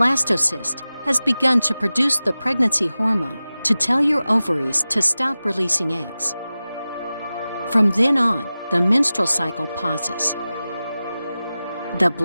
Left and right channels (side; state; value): both; inverted; correlation -0.96